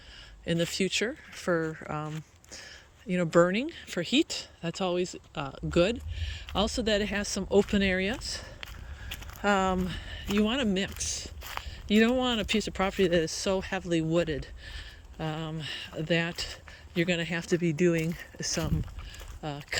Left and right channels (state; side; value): identical; both; correlation 1.00